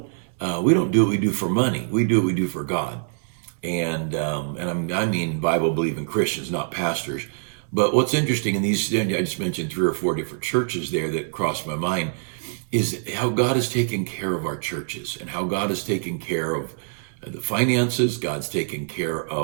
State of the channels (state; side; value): silent; left; 62 dB below the other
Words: do what we do for money. We do what we do for God. And I mean Bible believing Christians, not pastors. But what's interesting in these, I just mentioned 3 or 4 different churches there that crossed my mind, is how God has taken care of our churches and how God has taken care of the finances. God's taken care